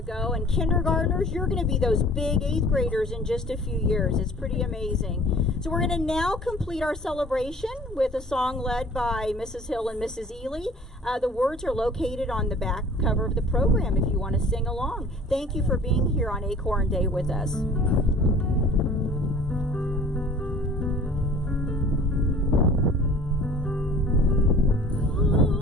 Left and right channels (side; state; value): both; normal; correlation 0.49